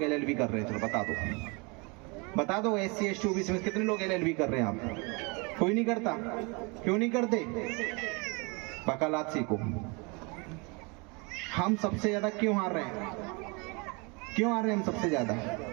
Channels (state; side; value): quieter; left; 29.9 dB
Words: एलएलबी कर रहे हैं। चलो बता दो, बता दो। एससी एसटी ओबीसी में कितने लोग एलएलबी कर रहे हैं? आप कोई नहीं करता। क्यों नहीं करते? वकालत सीखो। हम सबसे ज्यादा क्यों हार रहे हैं? क्यों आ रहे हैं हम सबसे ज्यादा?